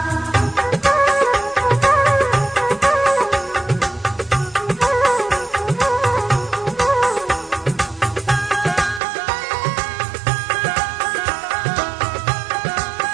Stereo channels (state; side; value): drops out; left; at 9.0 s